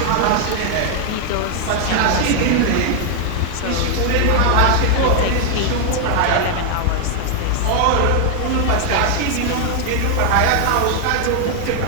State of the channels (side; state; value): both; different; correlation 0.00